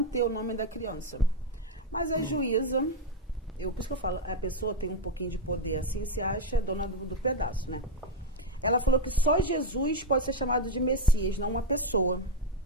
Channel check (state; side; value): normal; both; correlation 0.05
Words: o nome da criança. Mas a juíza, por isso que eu falo, a pessoa tem um pouquinho de poder assim, se acha dona do pedaço, né? Ela falou que só Jesus pode ser chamado de Messias, não uma pessoa.